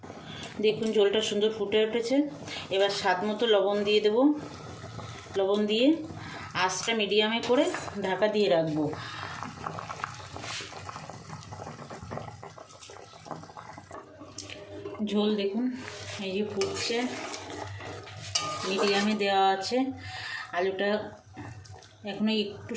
দেখুন ঝোলটা সুন্দর ফুটে উঠেছে, এবার স্বাদ মতো লবণ দিয়ে দেবো। লবণ দিয়ে আঁচটা মিডিয়ামে করে ঢাকা দিয়ে রাখবো। ঝোল দেখুন এই যে ফুটছে, মিডিয়ামে দেওয়া আছে। আলুটা এখনও একটু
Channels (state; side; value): identical; both; correlation 1.00